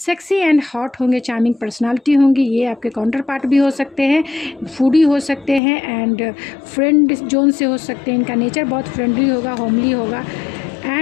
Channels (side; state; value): right; drops out; at 5.6 s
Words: एंड हॉट होंगे, चार्मिंग पर्सनालिटी होंगी, ये आपके काउंटर पार्ट भी हो सकते हैं, फूडी हो सकते हैं, एंड फ्रेंड जोन से हो सकते हैं। इनका नेचर बहुत फ्रेंडली होगा, होमली होगा,